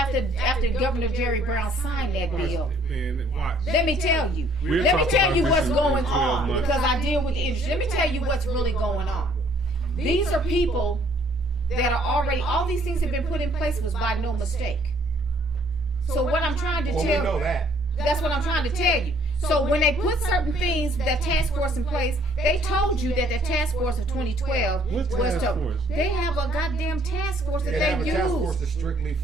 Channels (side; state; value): both; normal; correlation 0.62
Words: Governor Jerry Brown signed that bill. Man, watch. Let me tell you. We'll Let me talk tell about you this what's in going 12 on months. because I deal with the industry. Let me tell you what's really going on. These are people that are already. All these things have been put in place was by no mistake. So what I'm trying to Well, we tell know that. that's what I'm trying to tell you. So when they put certain things, that task force in place, they told you that the task force of 2012 What task force? They have a goddamn task force that They have a they task use. force that's strictly